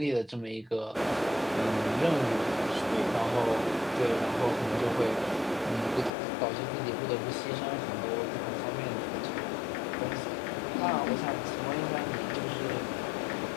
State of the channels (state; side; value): drops out; right; at 6.1 s